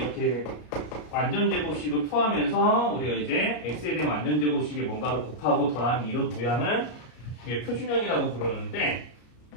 완전제곱식을 포함해서 우리가 이제 x에 대한 완전제곱식에 뭔가를 곱하고 더하는 이런 모양을 표준형이라고 부르는데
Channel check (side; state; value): right; late; 33 ms